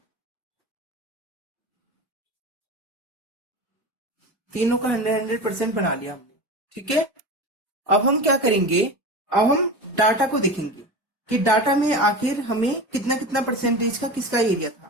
तीनों का 100% बना लिया हमने। ठीक है, अब हम क्या करेंगे, अब हम डाटा को देखेंगे कि डाटा में आखिर हमें कितना कितना परसेंटेज का किसका एरिया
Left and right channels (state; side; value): normal; both; correlation 0.28